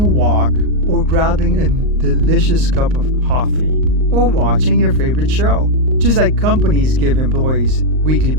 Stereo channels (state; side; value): late; left; 38 ms